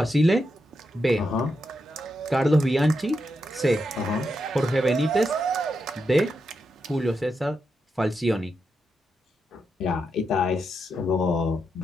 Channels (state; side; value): normal; both; correlation 0.85